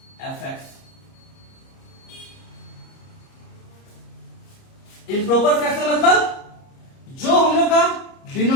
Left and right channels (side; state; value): right; late; 30 ms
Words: fx। Improper fraction मतलब जो हम लोग का